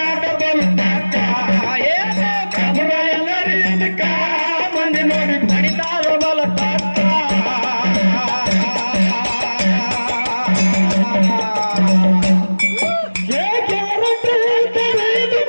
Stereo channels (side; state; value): both; inverted; correlation -1.00